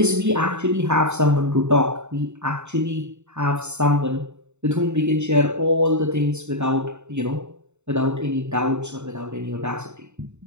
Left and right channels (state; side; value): late; left; 0.82 ms